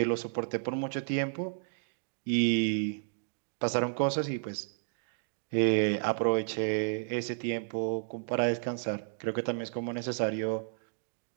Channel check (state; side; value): silent; left; digital silence